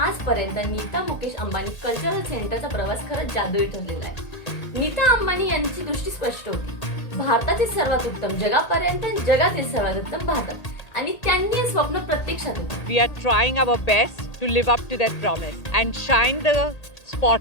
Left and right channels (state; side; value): late; right; 1.8 ms